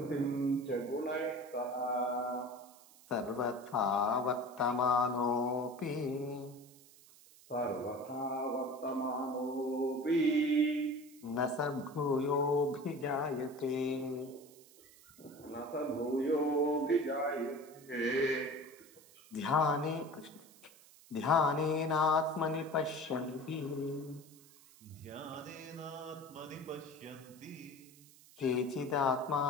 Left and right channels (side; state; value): right; noise; hiss, 24 dB below the sound